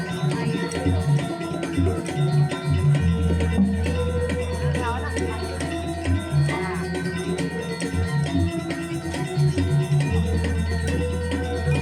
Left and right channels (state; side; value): identical; both; correlation 1.00